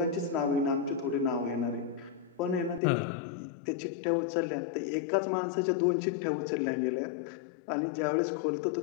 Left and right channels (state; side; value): drops out; right; at 2.8 s